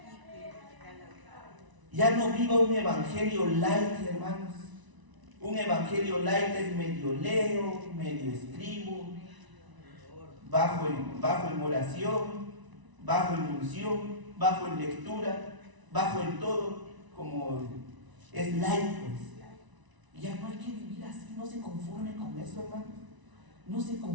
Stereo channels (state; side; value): late; left; 1.0 ms